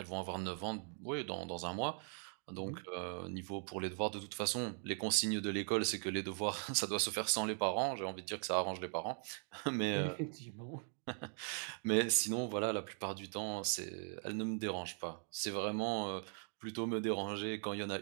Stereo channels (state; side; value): silent; left; 51 dB below the other